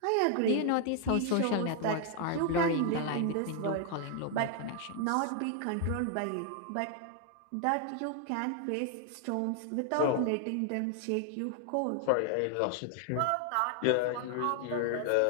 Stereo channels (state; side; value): different; both; correlation 0.00